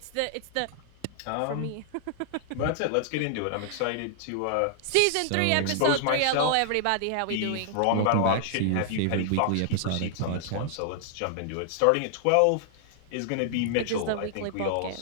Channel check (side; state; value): both; different; correlation -0.01